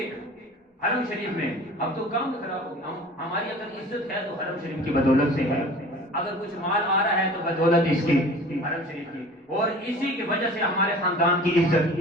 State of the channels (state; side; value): normal; both; correlation 0.43